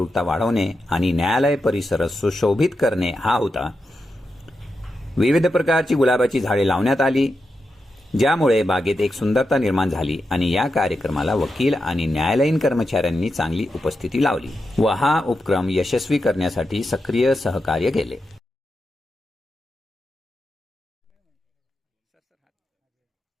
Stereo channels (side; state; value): both; normal; correlation 0.88